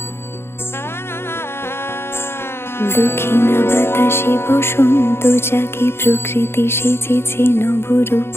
বাতাসে বসন্ত জাগে, প্রকৃতি সেজেছে নবরূপ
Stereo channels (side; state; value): right; late; 0.12 ms